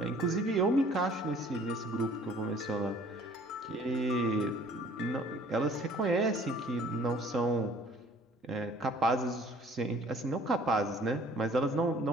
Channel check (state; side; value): normal; both; correlation 0.54